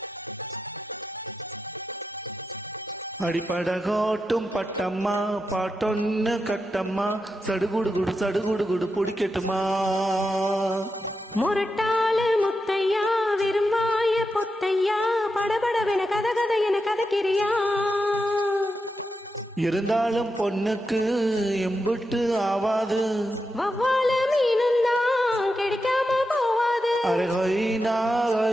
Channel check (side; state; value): both; normal; correlation 0.87